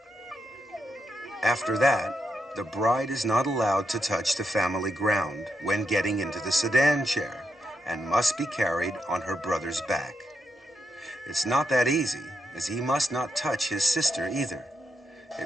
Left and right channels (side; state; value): both; normal; correlation 0.83